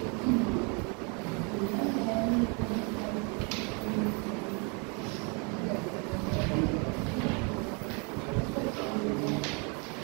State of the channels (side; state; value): left; quieter; 34.1 dB